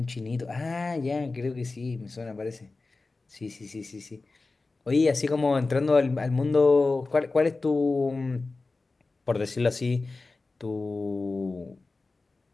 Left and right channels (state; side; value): quieter; right; 3.6 dB